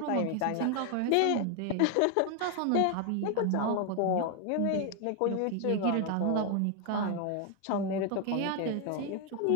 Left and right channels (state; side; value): different; both; correlation 0.01